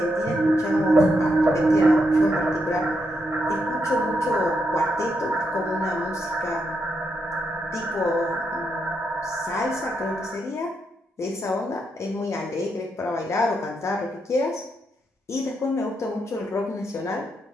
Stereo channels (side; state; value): both; normal; correlation 0.81